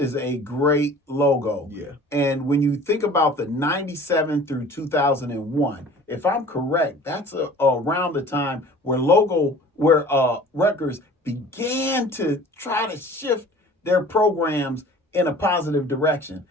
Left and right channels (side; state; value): both; normal; correlation 0.46